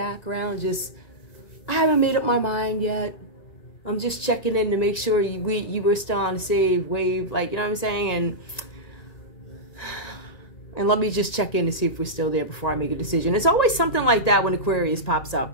just, I haven't made up my mind yet. I'm just checking in to make sure you were still on the save wave, like, you know what I'm saying? And let me just check in to see if we're still there before I make a decision. It's always something like that when Aquarius pops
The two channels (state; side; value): late; right; 1.9 ms